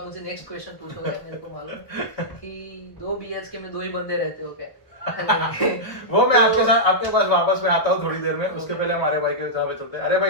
मुझे नेक्स्ट क्वेश्चन पूछोगे, मेरे को मालूम कि 2 BHK में 2 ही बंदे रहते हो क्या? वो मैं आपके पास वापस में आता हूँ थोड़ी देर में। उसके पहले हमारे भाई के साथ चलते हैं। अरे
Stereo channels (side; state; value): right; late; 1.4 ms